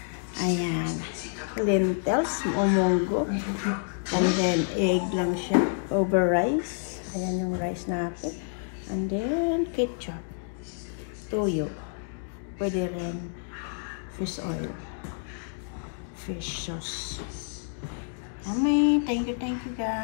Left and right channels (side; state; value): right; silent; digital silence